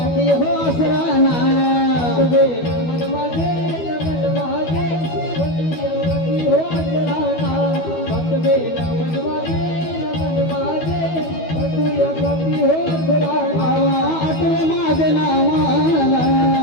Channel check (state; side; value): late; right; 12 ms